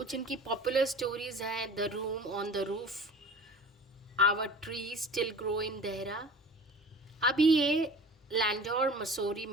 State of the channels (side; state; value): both; normal; correlation 0.41